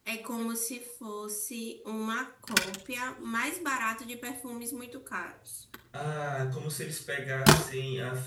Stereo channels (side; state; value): both; identical; correlation 1.00